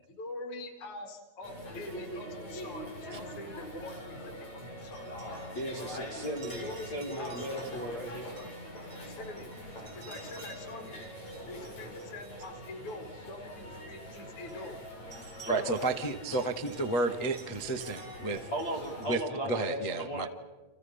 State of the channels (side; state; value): right; late; 8.3 ms